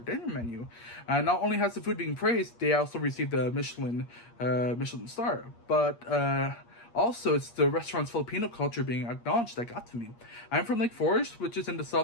dinner menu. Not only has the food being praised, they also received the Michelin star. But also, it's the restaurant's Filipino culture being acknowledged that got to me. I'm from Lake Forest, which is in the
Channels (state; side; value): late; right; 8.5 ms